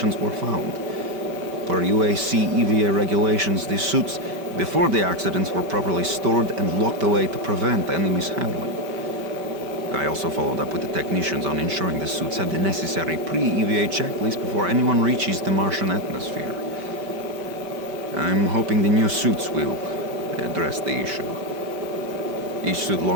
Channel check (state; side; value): late; left; 5.1 ms